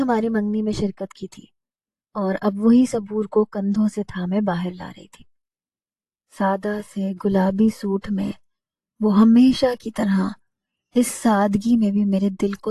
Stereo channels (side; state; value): both; identical; correlation 1.00